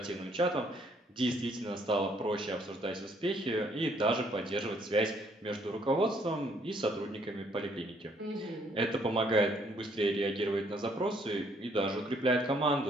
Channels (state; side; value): normal; both; correlation 0.66